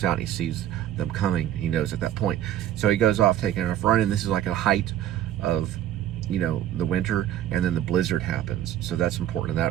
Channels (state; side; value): quieter; left; 11.7 dB